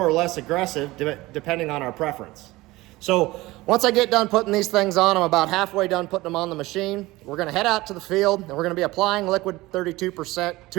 or less aggressive depending on our preference. So once I get done putting these things on, I'm about halfway done putting them on the machine. We're gonna head out to the field and we're gonna be applying liquid 32%,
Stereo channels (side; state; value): left; quieter; 19.6 dB